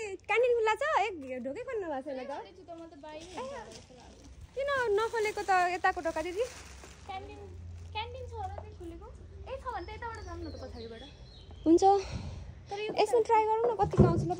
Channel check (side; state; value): both; identical; correlation 1.00